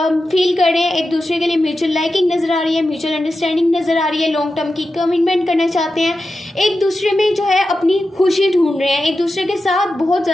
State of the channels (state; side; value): normal; both; correlation 0.91